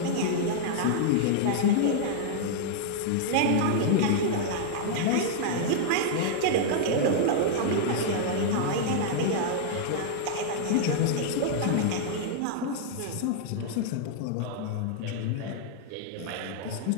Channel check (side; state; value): both; different; correlation -0.01